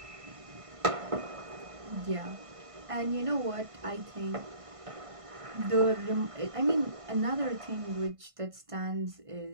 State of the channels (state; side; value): late; left; 1.5 ms